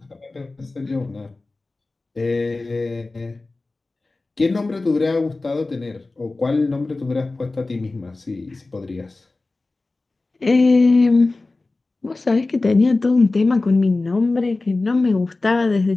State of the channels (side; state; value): right; quieter; 3.3 dB